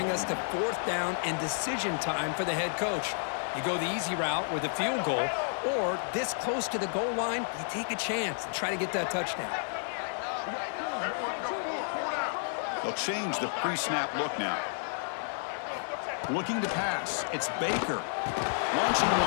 us to fourth down and decision time for the head coach. You go the easy route with a field goal, or this close to the goal line, you take a chance and try to get that touchdown. They'll change the pre-snap look now. Looking to pass. It's Baker. Launching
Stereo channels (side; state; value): right; silent; digital silence